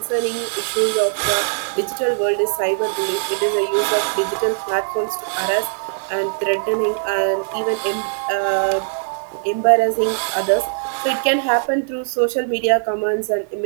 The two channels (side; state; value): left; silent; 61 dB below the other